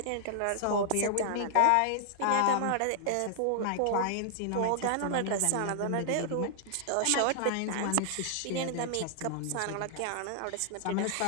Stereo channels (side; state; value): both; different; correlation -0.01